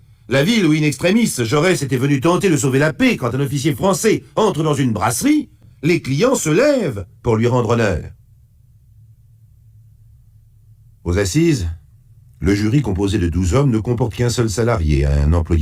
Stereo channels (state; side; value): identical; both; correlation 1.00